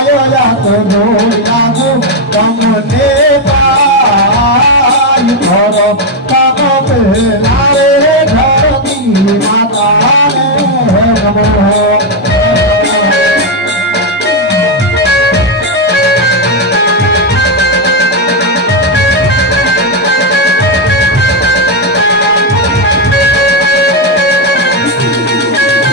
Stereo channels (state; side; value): normal; both; correlation 0.04